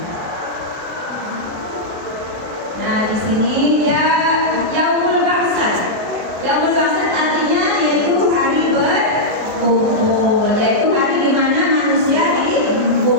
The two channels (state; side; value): late; left; 23 ms